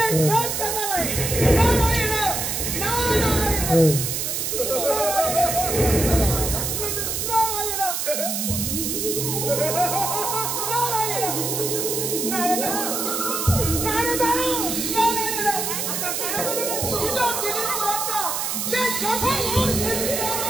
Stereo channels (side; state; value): right; noise; hiss, 1 dB below the sound